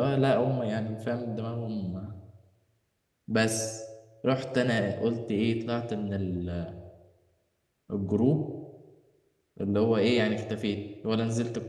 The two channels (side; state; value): both; identical; correlation 1.00